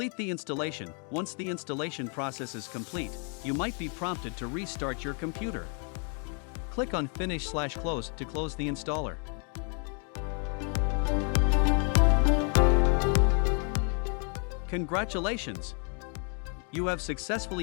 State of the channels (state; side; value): quieter; right; 39.3 dB